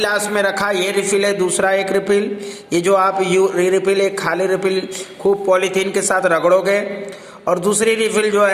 में रखा ये रिफिल है, दूसरा एक रिफिल, ये जो आप रिफिल एक खाली रिफिल खूब पॉलीथीन के साथ रगड़ोगे और दूसरी रिफिल जो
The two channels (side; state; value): both; identical; correlation 1.00